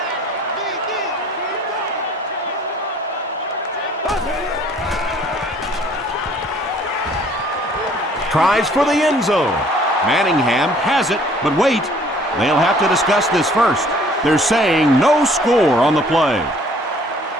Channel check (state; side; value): normal; both; correlation 0.57